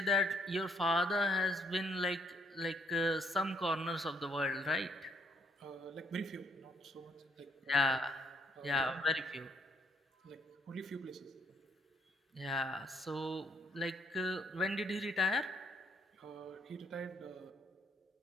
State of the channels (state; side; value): normal; both; correlation 0.69